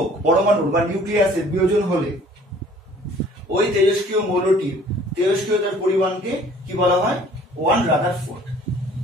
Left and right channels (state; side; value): normal; both; correlation 0.53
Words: পরমাণুর বা নিউক্লিয়াসের বিয়োজন হলে ওই তেজস্ক্রিয় মৌলটির তেজস্ক্রিয়তার পরিমাণকে কি বলা হয়? 1 রাদারফোর্ড।